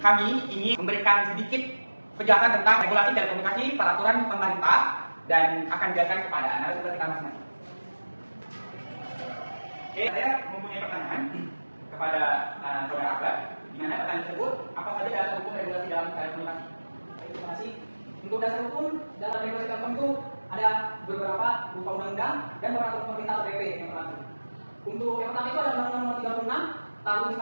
ingin memberikan sedikit penjelasan tentang regulasi telekomunikasi, peraturan pemerintah, dan akan dijelaskan kepada narasumber kita masing-masing. Oke, saya mempunyai pertanyaan kepada saudara Akbar, di mana pertanyaan tersebut apa saja dasar hukum regulasi dalam telekomunikasi? Terima kasih. Untuk dasar hukum dalam regulasi telkom itu ada beberapa berupa undang-undang dan peraturan pemerintah atau PP yang berlaku. Untuk yang pertama itu ada Undang-Undang Nomor 36 Tahun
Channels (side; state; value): both; inverted; correlation -1.00